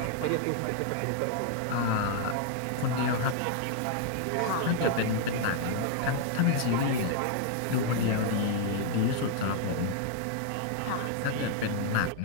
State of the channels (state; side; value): different; both; correlation 0.00